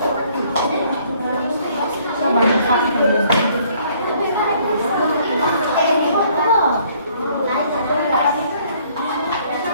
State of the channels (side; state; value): both; inverted; correlation -0.62